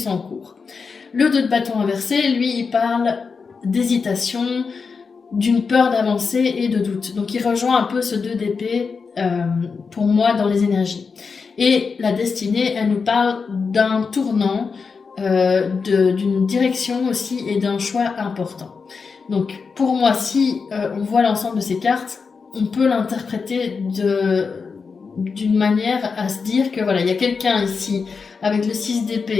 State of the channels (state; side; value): quieter; right; 5.1 dB